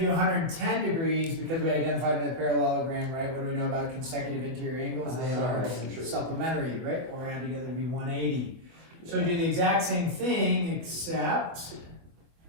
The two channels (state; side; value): late; left; 24 ms